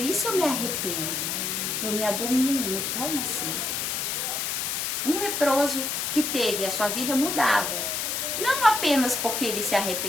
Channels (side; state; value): left; noise; hiss, 1 dB below the sound